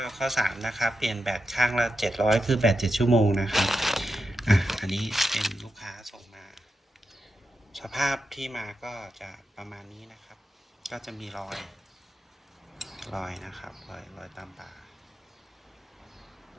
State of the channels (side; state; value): both; normal; correlation 0.88